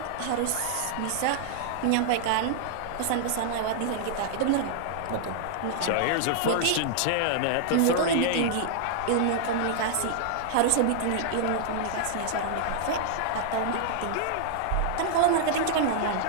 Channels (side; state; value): both; different; correlation -0.01